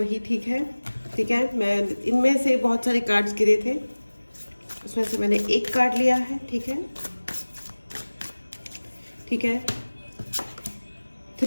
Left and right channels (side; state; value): both; inverted; correlation -1.00